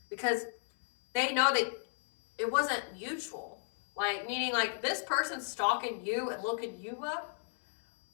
Because they know that it wasn't mutual. Like, meaning like this person's stalking you and looking you up.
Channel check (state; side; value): silent; right; 55 dB below the other